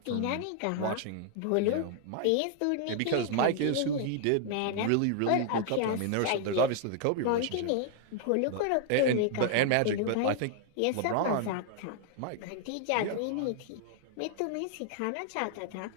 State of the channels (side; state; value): both; different; correlation 0.00